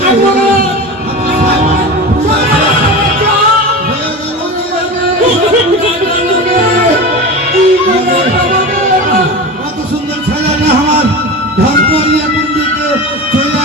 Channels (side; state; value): both; normal; correlation 0.28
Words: না কত সুন্দর ছেলেটা আমার ঘর করিয়া কুন্দিতে চলে